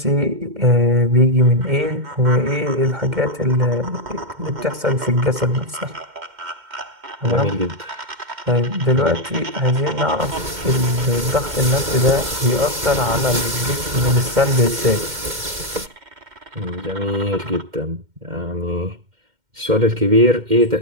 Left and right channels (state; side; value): late; left; 2.1 ms